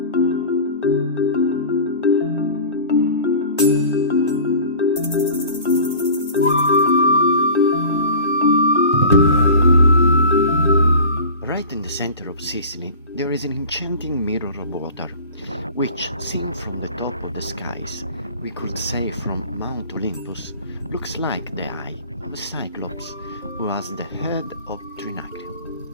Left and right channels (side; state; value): both; inverted; correlation -0.39